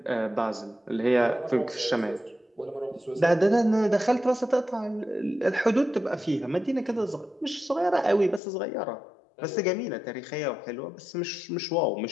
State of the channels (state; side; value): drops out; right; at 8.4 s